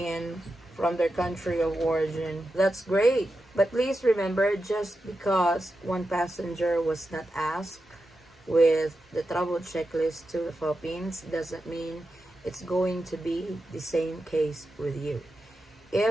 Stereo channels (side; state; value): both; normal; correlation 0.89